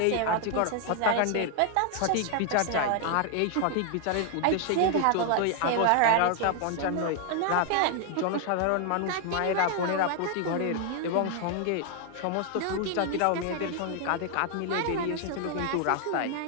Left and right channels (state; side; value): different; both; correlation 0.00